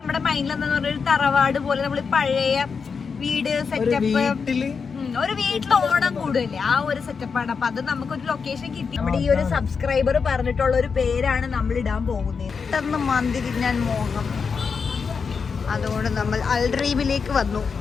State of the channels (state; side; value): quieter; right; 5.6 dB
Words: മൈൻഡിലെന്ന് പറഞ്ഞൊരു തറവാട് പോലെ നമ്മൾ പഴയ വീട് സെറ്റപ്പ് ഒരു വീട്ടിൽ ഓണം കൂടുതലേ ആ ഒരു സെറ്റപ്പാണ്. അപ്പൊ അത് നമുക്കൊരു ലൊക്കേഷൻ കിട്ടി. നമ്മുടെ ഈ ഒരു സബ്സ്ക്രൈബർ പറഞ്ഞിട്ടുള്ള ഒരു പേരാണ് നമ്മൾ ഇടാൻ പോകുന്നത്. പെട്ടെന്ന് മന്തി തിന്നാൻ മോഹം, അതുകൊണ്ട് നമ്മൾ അൽഡ്രീമിലേക്ക് വന്നു.